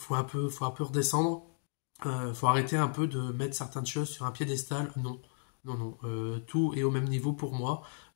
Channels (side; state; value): right; silent; digital silence